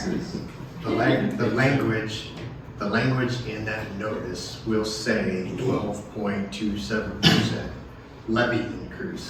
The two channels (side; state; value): both; identical; correlation 1.00